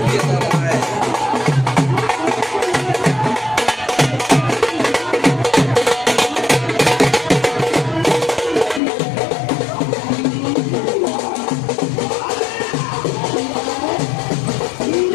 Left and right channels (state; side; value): drops out; right; at 8.8 s